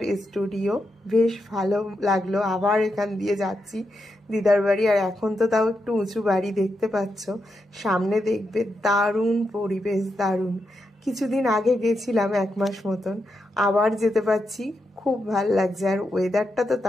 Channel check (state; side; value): normal; both; correlation 0.85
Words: স্টুডিও, বেশ ভালো লাগলো। আবার এখান দিয়ে যাচ্ছি দিদার বাড়ি। আর এখন তো তাও একটু উঁচু বাড়ি দেখতে পাচ্ছ, সামনে দেখবে দারুণ পরিবেশ, দারুণ। কিছুদিন আগে গেছিলাম 1 মাস মতন, আবার যেতে পারছি, খুব ভাল লাগছে। আর ওয়েদারটা তো